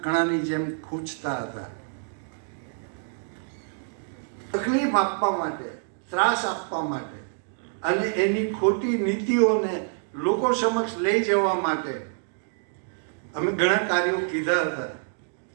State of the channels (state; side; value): silent; left; 60 dB below the other